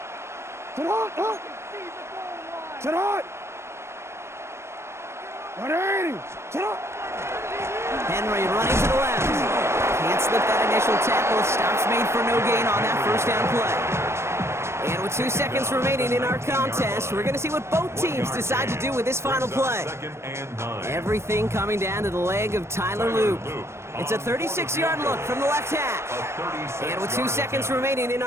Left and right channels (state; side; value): late; left; 0.13 ms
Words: Sit on! 180! Sit on! Henry running to the left. Can't slip that initial tackle. Stops made for no gain on that first down play. And with 2 seconds remaining in our contest, we're going to see what both teams decide to do with this final play. Everything coming down to the leg of Tyler Luke. It's a 36-yard look from the left hash. And with 2 seconds remaining in